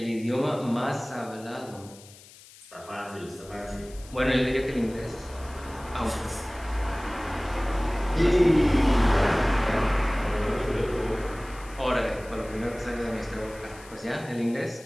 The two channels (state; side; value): noise; left; hiss, 21 dB below the sound